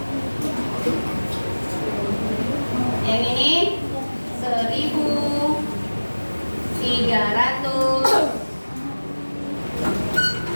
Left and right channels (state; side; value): inverted; both; correlation -1.00